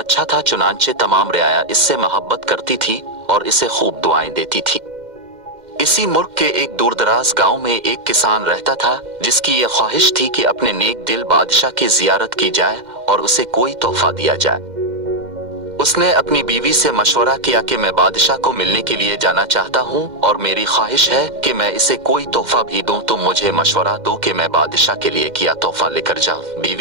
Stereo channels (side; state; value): left; late; 2.1 ms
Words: था, चुनांचे तमाम रियाया इससे मोहब्बत करती थी और इसे खूब दुआएं देती थी। इसी मुल्क के एक दूरदराज गांव में एक किसान रहता था जिसकी ये ख्वाहिश थी कि अपने नेक दिल बादशाह की जियारत की जाए और उसे कोई तोहफा दिया जाए। उसने अपनी बीवी से मशवरा किया कि मैं बादशाह को मिलने के लिए जाना चाहता हूँ और मेरी ख्वाहिश है कि मैं इसे कोई तोहफा भी दूं, तुम मुझे मशवरा दो कि मैं बादशाह के लिए क्या तोहफा लेकर जाऊं।